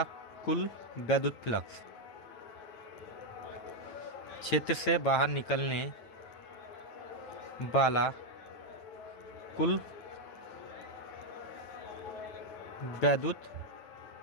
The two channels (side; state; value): right; late; 8.9 ms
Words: कुल वैद्युत फ्लक्स, क्षेत्र से बाहर निकलने वाला कुल वैद्युत